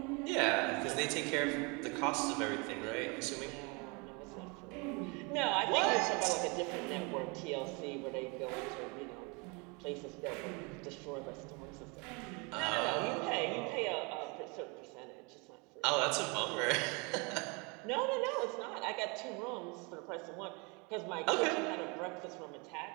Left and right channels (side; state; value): left; quieter; 30.0 dB